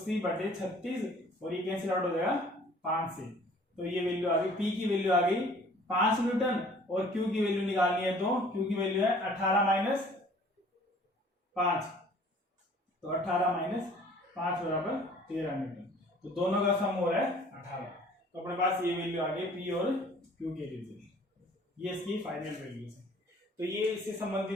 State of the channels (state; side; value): normal; both; correlation 0.52